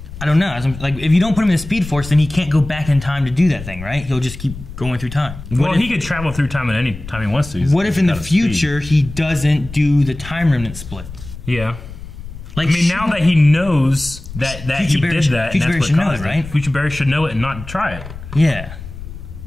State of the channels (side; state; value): left; noise; rumble, 13 dB below the sound